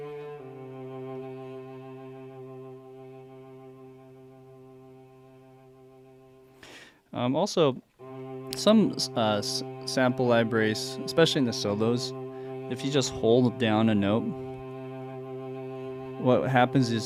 Also, some sample libraries, especially in the solos, if you just hold down a note, what happens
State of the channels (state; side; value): identical; both; correlation 1.00